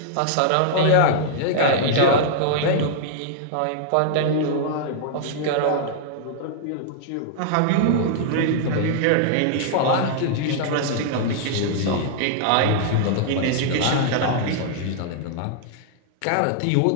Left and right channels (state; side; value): different; both; correlation -0.01